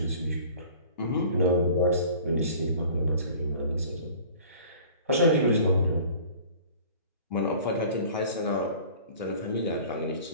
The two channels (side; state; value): both; inverted; correlation -0.47